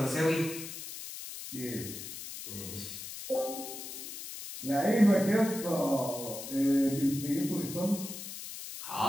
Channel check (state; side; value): noise; left; hiss, 10 dB below the sound